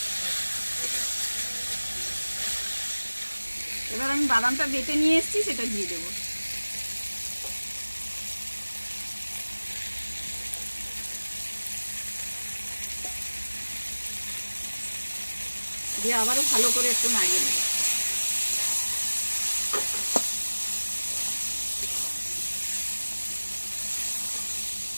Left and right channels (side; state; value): both; inverted; correlation -1.00